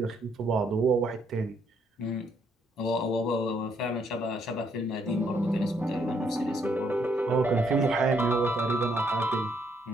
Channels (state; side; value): normal; both; correlation 0.71